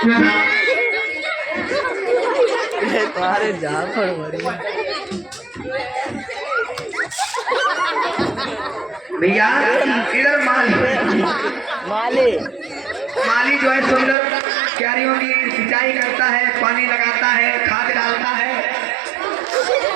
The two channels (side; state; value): left; drops out; at 14.2 s